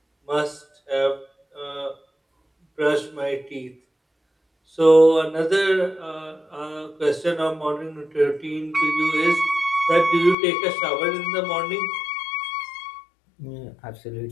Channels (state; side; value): drops out; right; at 10.4 s